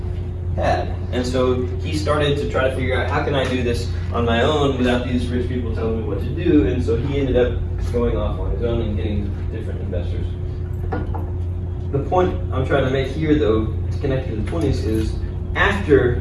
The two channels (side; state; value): both; identical; correlation 1.00